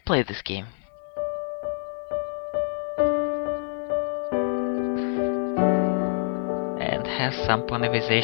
play this game. And has some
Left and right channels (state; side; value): silent; right; digital silence